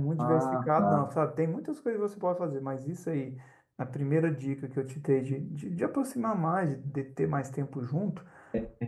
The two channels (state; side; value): identical; both; correlation 1.00